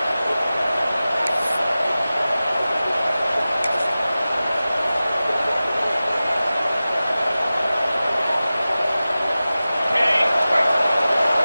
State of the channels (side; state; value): both; inverted; correlation -0.96